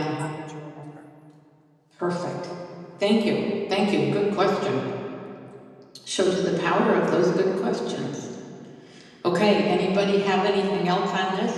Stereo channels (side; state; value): both; identical; correlation 1.00